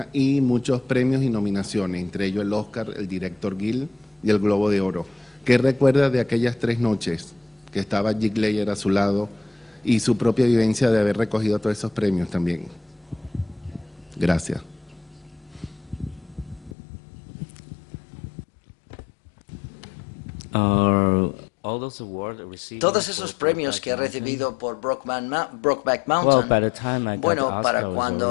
y muchos premios y nominaciones, entre ellos el Oscar, el director Gil y el Globo de Oro. ¿Qué recuerda de aquellas 3 noches que estaba Jake Layer a su lado y su propia vivencia de haber recogido todos esos premios también? Gracias. Todos esos premios que he recibido por Brokeback Mountain, bueno, para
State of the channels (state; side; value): drops out; right; at 16.8 s